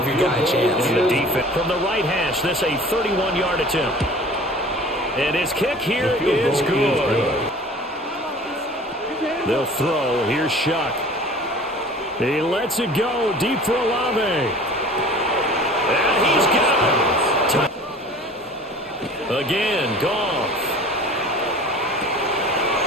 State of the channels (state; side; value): normal; both; correlation 0.44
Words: your guy a chance. The defense from the right hash. This a 31-yard attempt. And his kick here is good. They'll throw. Here's Shuck. He lets it go deep for Olave. And he's got it. Again, Goff.